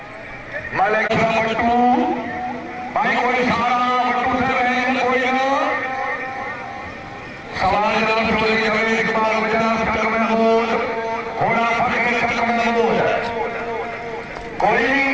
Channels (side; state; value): both; identical; correlation 1.00